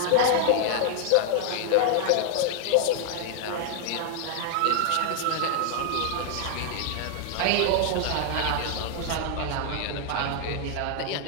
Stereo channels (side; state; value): both; different; correlation 0.00